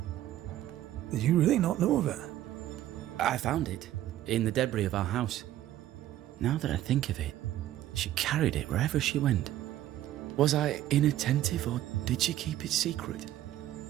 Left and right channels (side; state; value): left; quieter; 13.3 dB